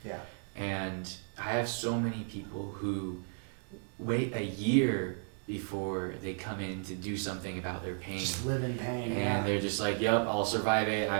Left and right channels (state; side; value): silent; left; 55 dB below the other